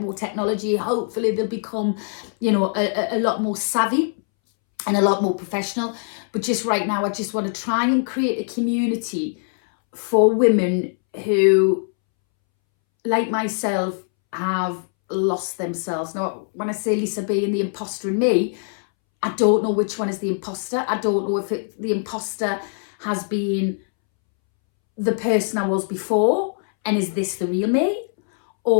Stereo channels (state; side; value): silent; right; 64 dB below the other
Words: more technology. Hopefully they'll become, a lot more savvy and a lot more professional. But just right now, I just want to try and create a community for women who, like myself, have lost themselves. Now, when I say Lisa B and the imposter in me, I don't know which one is the imposter. I don't know if the imposter has been the person I was before, and is this the real me?